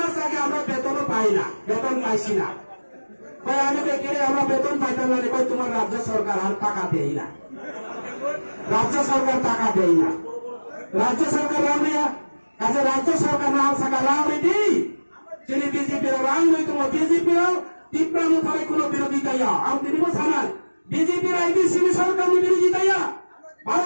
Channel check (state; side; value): inverted; both; correlation -1.00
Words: आगे আমরা বেতন পাই না বেতন পাইছি না কই আমি বেকেরে আমরা বেতন পাইতাম না কই তোমার রাজ্য সরকার আর টাকা দেই না রাজ্য সরকার টাকা দেই না রাজ্য সরকার রামিয়া কাজে রাজ্য সরকার না থাকা রামি দি যিনি বিজেপি র রাং নই তোমার বিজেপি র তীব্র মুখারে কোনো বিরোধিতা আম দিনিব সানাল বিজেপি র আইডিসি সরকার বিরোধিতা